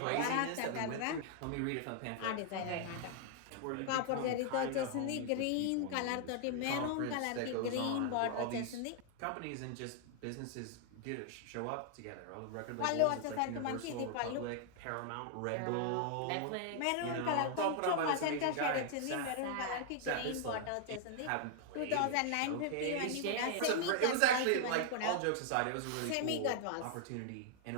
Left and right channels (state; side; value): different; both; correlation 0.00